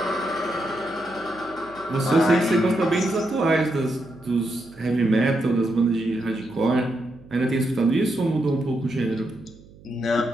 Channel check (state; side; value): noise; right; hum, 23 dB below the sound